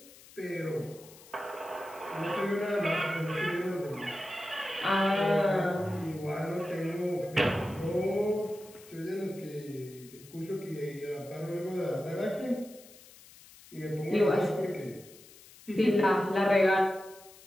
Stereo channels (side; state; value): left; noise; hiss, 21 dB below the sound